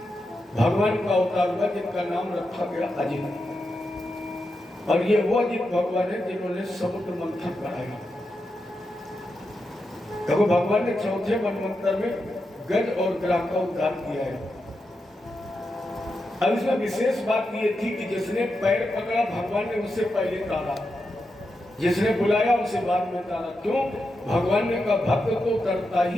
भगवान का अवतार हुआ जिनका नाम रखा गया अजित। और ये वो अजित भगवान है जिन्होंने समुद्र मंथन कराया। देखो भगवान ने 4थे मनवंतर में गज और ग्राह का उद्धार किया है। अब इसमें विशेष बात ये थी कि जिसने पैर पकड़ा भगवान ने उससे पहले तारा, जिसने बुलाया उसे बाद में तारा। क्यों? भगवान ने कहा भक्त तो करता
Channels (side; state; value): both; normal; correlation 0.87